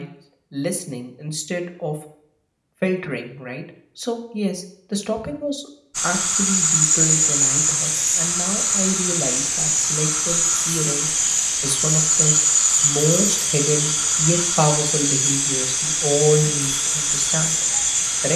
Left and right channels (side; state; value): both; identical; correlation 1.00